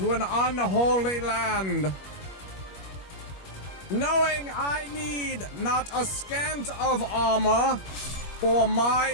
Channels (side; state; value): right; late; 21 ms